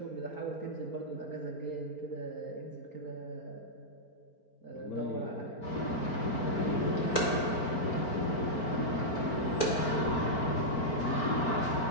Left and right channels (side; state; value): right; late; 4.4 ms